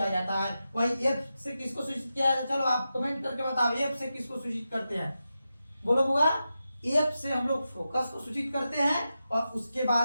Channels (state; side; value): inverted; both; correlation -0.90